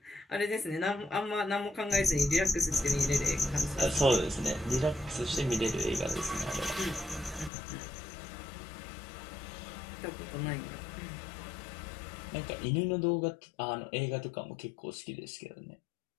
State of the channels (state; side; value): drops out; right; at 7.5 s